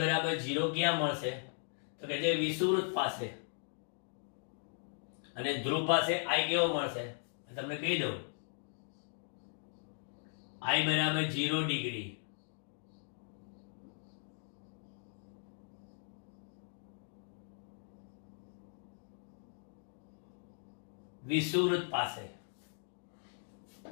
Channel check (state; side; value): silent; right; 52 dB below the other